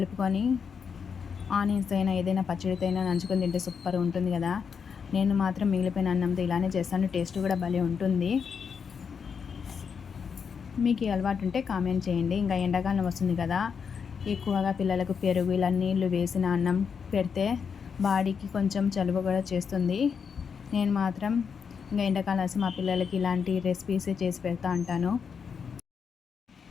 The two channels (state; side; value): quieter; right; 6.4 dB